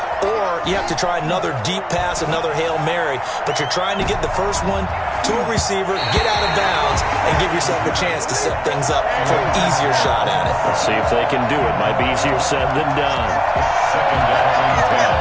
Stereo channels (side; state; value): both; identical; correlation 1.00